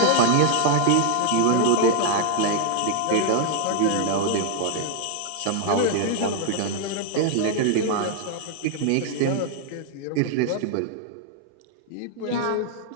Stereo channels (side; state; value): both; different; correlation 0.00